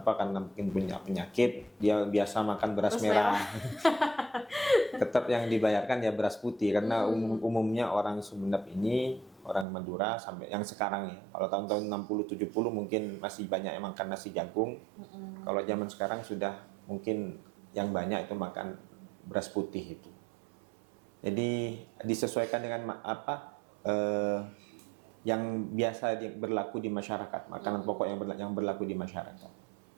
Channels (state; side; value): drops out; left; at 9.7 s